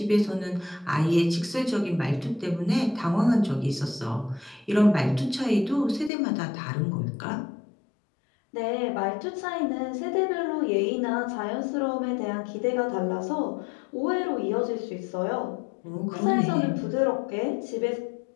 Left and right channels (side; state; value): right; drops out; at 6.1 s